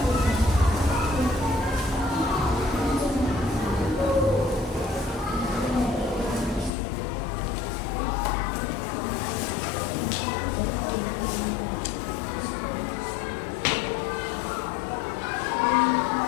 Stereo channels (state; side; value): drops out; right; at 6.7 s